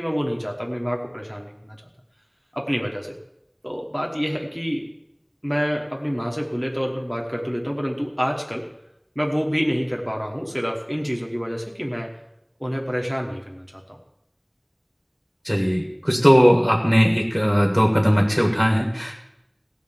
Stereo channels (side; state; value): both; identical; correlation 1.00